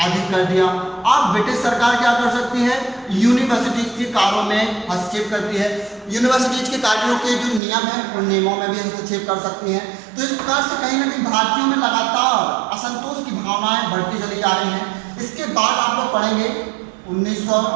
अधिक कर दिया। अब ब्रिटिश सरकार क्या कर सकती है, यूनिवर्सिटीज के कार्यों में हस्तक्षेप करती है, यूनिवर्सिटीज के कार्यों के जो नियम हैं उन नियमों में भी हस्तक्षेप कर सकती हैं। तो इस प्रकार से कहीं ना कहीं भारतीयों में लगातार असंतोष की भावनाएं बढ़ती चली जा रही हैं। इसके बाद आप लोग पढ़ेंगे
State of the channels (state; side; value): drops out; left; at 7.6 s